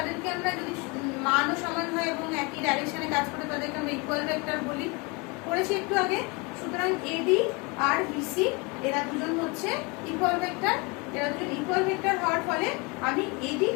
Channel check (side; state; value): right; quieter; 28.2 dB